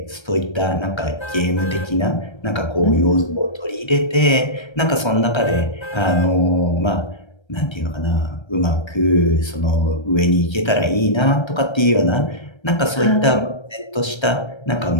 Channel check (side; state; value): right; late; 1.3 ms